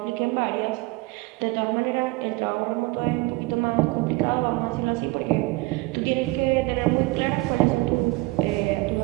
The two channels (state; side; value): quieter; left; 22.7 dB